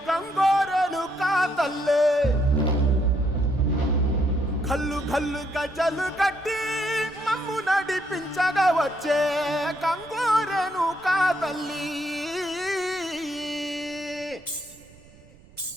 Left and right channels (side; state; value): right; noise; rumble, 25 dB below the sound